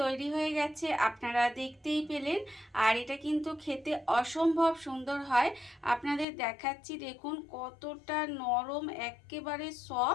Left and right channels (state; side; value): drops out; right; at 6.2 s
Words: তৈরি হয়ে গেছে, আপনারা দেখতেই পেলেন। আর এটা কিন্তু খেতে অসম্ভব সুন্দর হয়। আপনাদের দেখাচ্ছি, দেখুন কতটা নরম, একেবারে